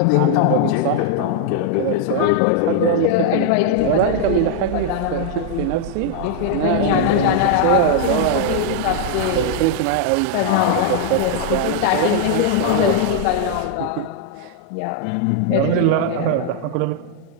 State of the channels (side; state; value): both; different; correlation -0.01